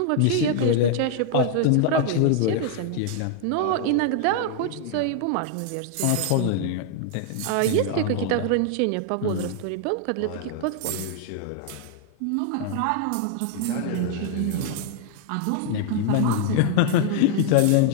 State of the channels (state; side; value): different; both; correlation 0.00